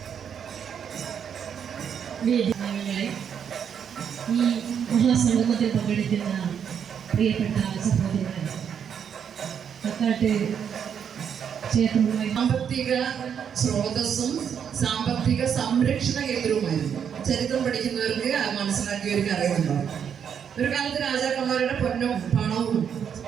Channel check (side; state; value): left; quieter; 7.9 dB